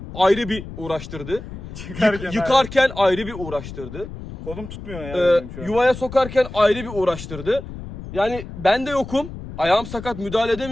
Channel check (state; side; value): noise; left; rumble, 11 dB below the sound